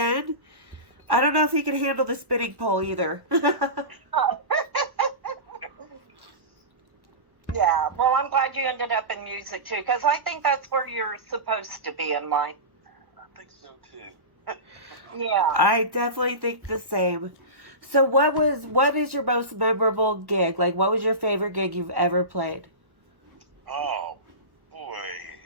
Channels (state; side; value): late; left; 1.1 ms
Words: I don't know if he can handle the spinning pole either. Yeah, well, I'm glad you ended up in music, too, because I think that's where you're supposed to be in life. I think so, too. Yeah. I definitely think the same. So what is your most memorable gig? Like, what was your favorite gig you've ever played? Oh, boy.